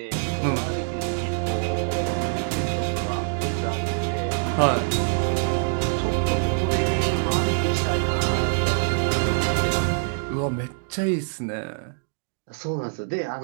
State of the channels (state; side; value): silent; left; digital silence